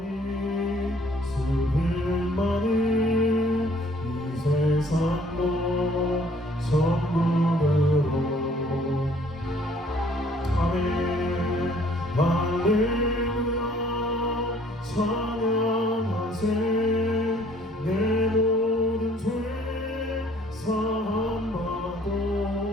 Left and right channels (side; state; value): both; normal; correlation 0.59